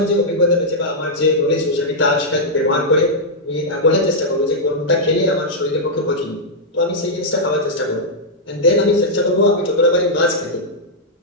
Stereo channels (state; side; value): normal; both; correlation -0.07